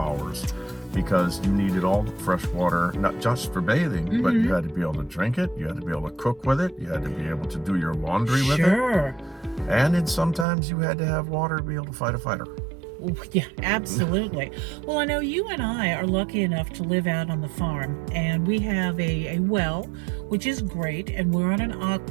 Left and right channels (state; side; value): drops out; left; at 10.5 s